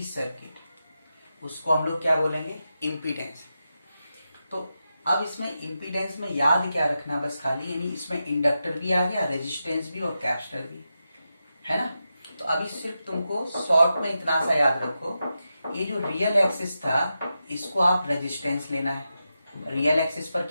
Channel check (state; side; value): inverted; both; correlation -0.89